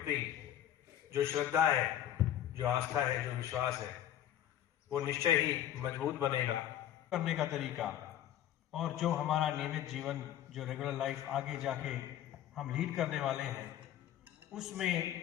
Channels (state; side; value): quieter; right; 11.4 dB